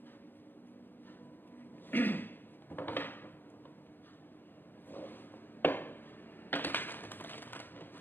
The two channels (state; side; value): late; right; 0.095 ms